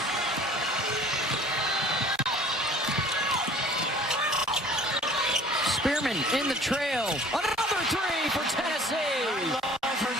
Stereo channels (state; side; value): normal; both; correlation 0.49